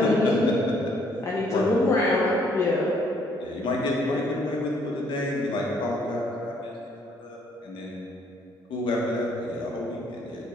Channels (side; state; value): both; normal; correlation 0.66